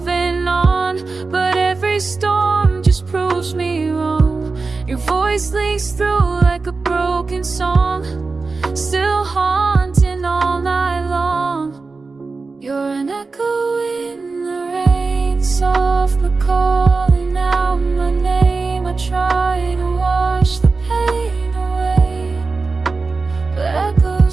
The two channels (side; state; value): left; quieter; 4.0 dB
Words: on, but every storm just proves me wrong. Your voice leaks through like a broken song, still haunting all night long. You're an echo in the rain, soft but calling out my name. I try to wash the pain away, but